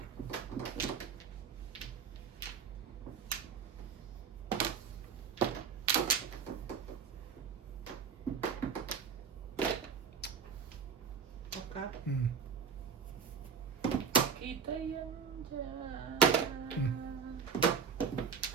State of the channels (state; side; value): quieter; left; 6.4 dB